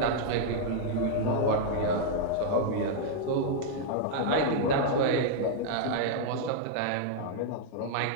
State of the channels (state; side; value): different; both; correlation -0.01